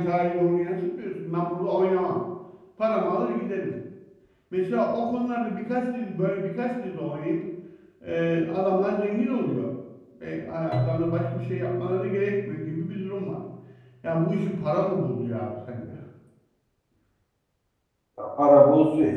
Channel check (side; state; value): both; identical; correlation 1.00